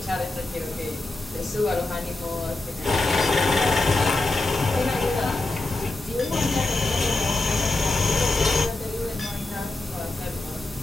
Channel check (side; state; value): right; quieter; 3.0 dB